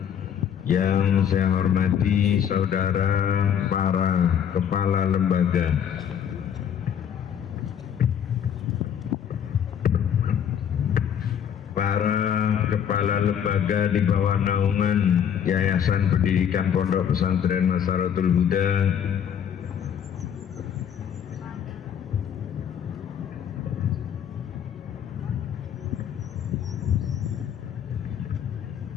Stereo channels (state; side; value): quieter; right; 8.7 dB